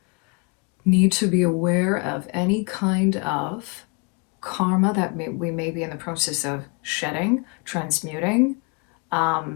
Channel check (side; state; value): right; quieter; 31.5 dB